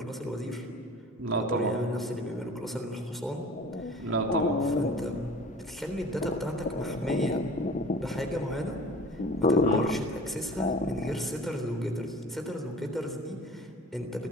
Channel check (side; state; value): both; normal; correlation 0.43